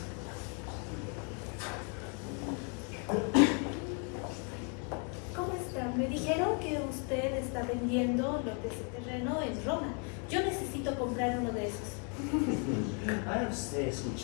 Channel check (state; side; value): quieter; right; 38.5 dB